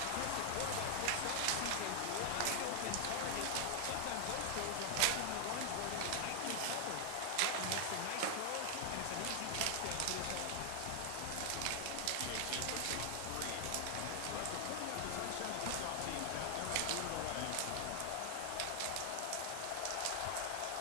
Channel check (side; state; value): both; different; correlation 0.00